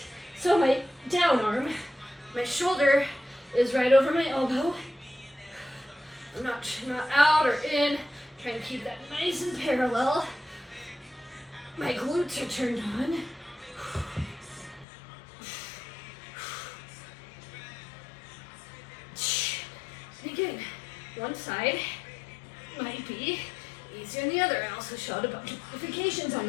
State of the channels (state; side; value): drops out; right; at 14.9 s